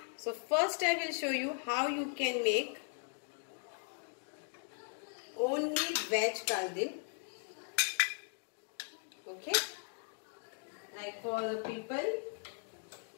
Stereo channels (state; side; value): silent; right; 52 dB below the other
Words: So first I will show you how you can make only veg kaldin. Okay, like for the people